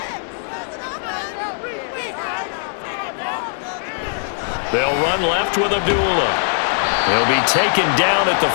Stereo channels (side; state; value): right; silent; digital silence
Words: They'll run left with Abdullah. He'll be taken down at the